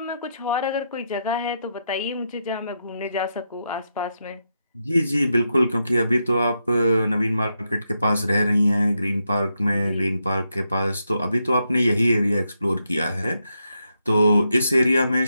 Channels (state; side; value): inverted; both; correlation -0.83